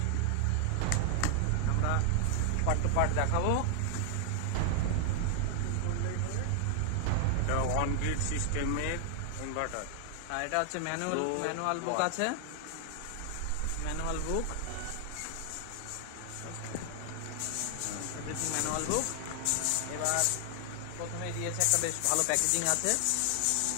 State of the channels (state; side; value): different; both; correlation 0.00